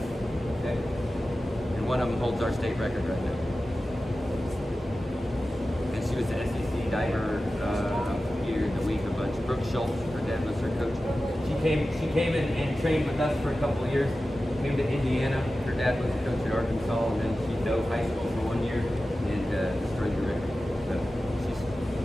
Okay? And one of them holds our state record right now. And she was the SEC diver here in the week a bunch. Brooke Schultz, her dad was her coach. She came in and trained with us for a couple of years. Came to Indiana. Her dad was a coach at Arkansas, and then she dove high school for 1 year and destroyed the record.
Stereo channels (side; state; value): both; normal; correlation 0.94